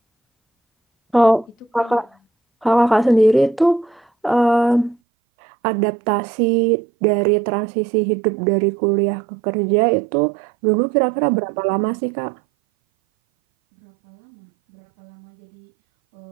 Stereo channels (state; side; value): drops out; left; at 5.0 s